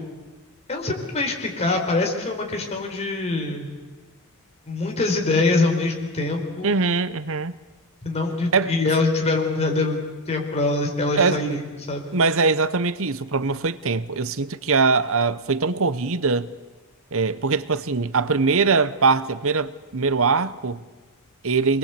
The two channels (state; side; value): normal; both; correlation 0.00